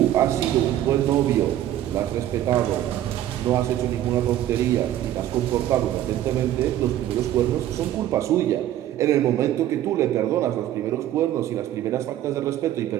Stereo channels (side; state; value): left; quieter; 12.5 dB